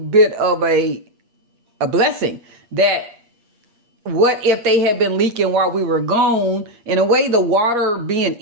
of a blessing that what if they had been leaking while we were gone? In a way, the water being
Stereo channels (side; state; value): left; late; 8.5 ms